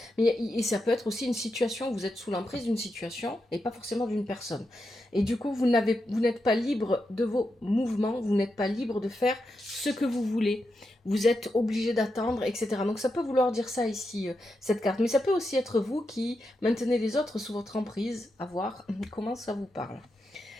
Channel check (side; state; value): both; normal; correlation 0.86